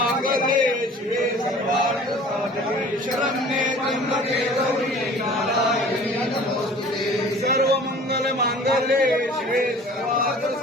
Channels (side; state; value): both; normal; correlation 0.46